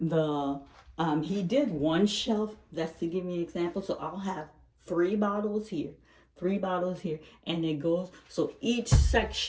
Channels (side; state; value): both; identical; correlation 1.00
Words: he did 1 shelf. That's to give me an example. So I'll have 3 bottles here, 3 bottles here, and it goes. So each